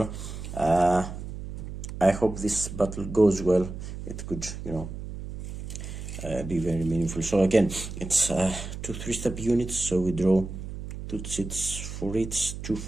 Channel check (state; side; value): noise; right; hum, 8 dB below the sound